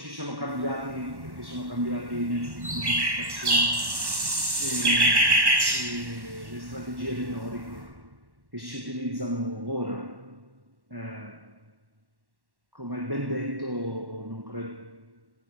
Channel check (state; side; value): late; left; 1.1 ms